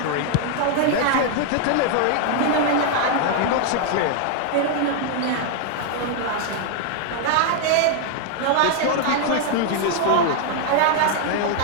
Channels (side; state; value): both; different; correlation 0.00